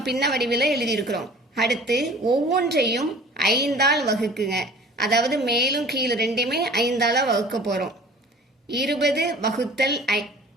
பின்ன வடிவில் எழுதியிருக்கிறோம். அடுத்து ஒவ்வொன்றையும் 5ஆல் வகுக்குங்க, அதாவது மேலும் கீழே ரெண்டையுமே 5ஆல் வகுக்க போகிறோம். 20 வகுத்தல்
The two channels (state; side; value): normal; both; correlation 0.46